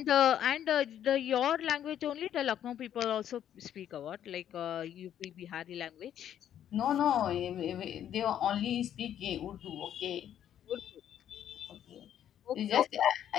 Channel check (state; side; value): quieter; right; 10.3 dB